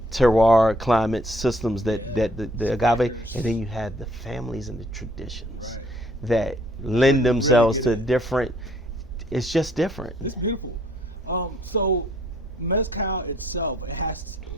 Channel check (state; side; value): normal; both; correlation 0.63